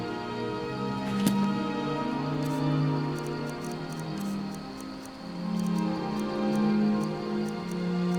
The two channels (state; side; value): identical; both; correlation 1.00